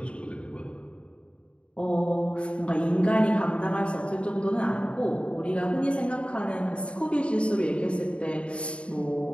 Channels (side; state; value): right; late; 0.058 ms